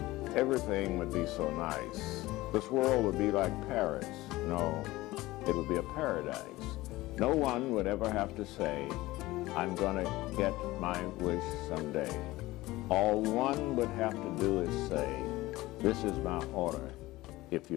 everything would be so nice. This world would be like Paris. No, it would be a paradise. No one would ever have to say, I'm gonna get my wish someday. All one would have to do is say, this is my order, if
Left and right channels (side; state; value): right; quieter; 18.6 dB